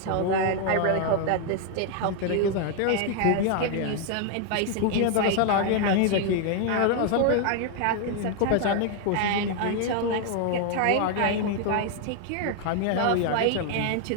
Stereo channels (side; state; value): both; different; correlation 0.00